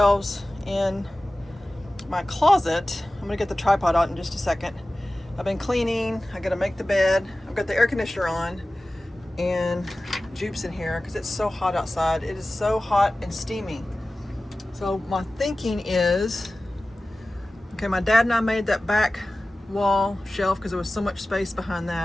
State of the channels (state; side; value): normal; both; correlation 0.96